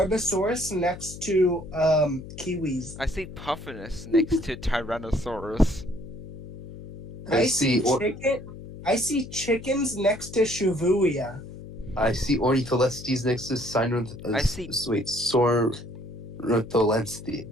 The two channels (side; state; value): left; noise; hum, 12 dB below the sound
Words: next to kiwis. I see Puffinus next to Tyrannosaurus. I see chickens next to Shibuya. I see Ornitholestes next to Sornitholestes.